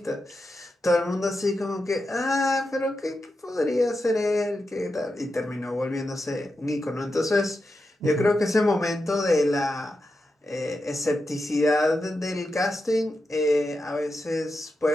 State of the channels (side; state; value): both; normal; correlation 0.88